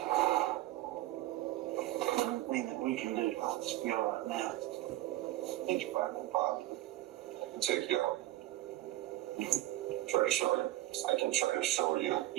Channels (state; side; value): quieter; left; 16.2 dB